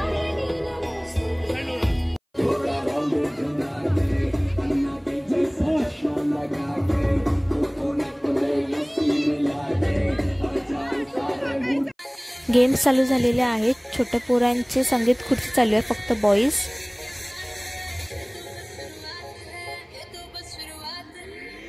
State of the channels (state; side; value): identical; both; correlation 1.00